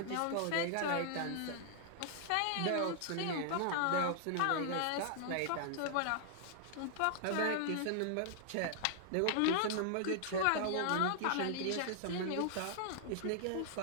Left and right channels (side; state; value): both; different; correlation -0.01